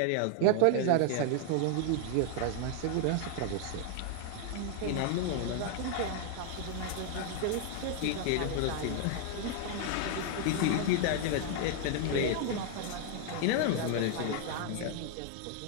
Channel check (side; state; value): both; different; correlation 0.00